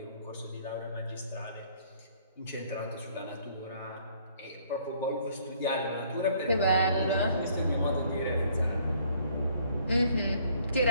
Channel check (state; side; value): inverted; both; correlation -0.61